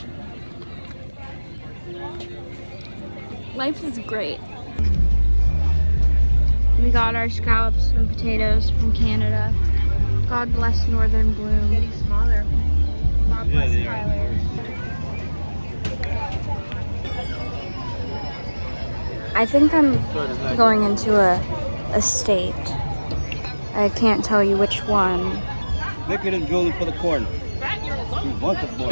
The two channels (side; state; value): both; inverted; correlation -1.00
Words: Life is great. We got our scallops and potatoes from Canada. God bless Northern Bloom. Getting smaller. God bless Kailer. I think I'm going into a state. I can't tell you which one. look at him drilling for the corn. You want the